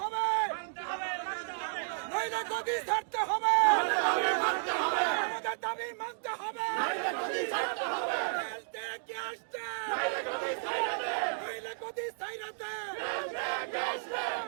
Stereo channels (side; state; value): left; silent; digital silence